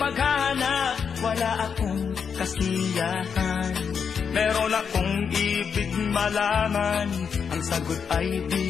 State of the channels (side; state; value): right; quieter; 6.6 dB